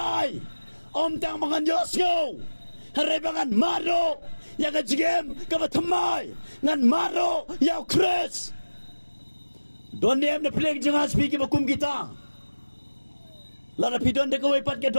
om tang mangan yosyo harebangan maro ya ka jigem ka ba thamai ngan maro ya kres don dem na plek janga speak ba kum kita lara pidon de ko pat ke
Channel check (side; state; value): both; inverted; correlation -1.00